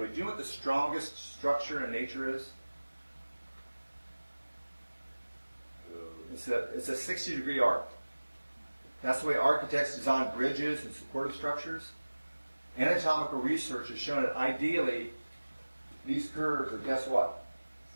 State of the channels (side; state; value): both; inverted; correlation -1.00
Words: Do you know what the strongest structure in nature is? It's a 60-degree arc. That's the way architects design bridges and supportive structures. Anatomical research has shown that ideally, these curves are, guess what?